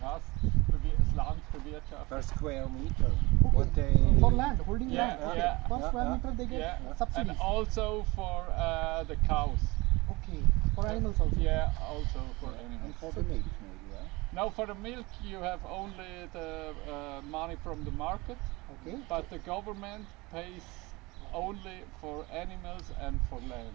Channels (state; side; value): quieter; left; 23.2 dB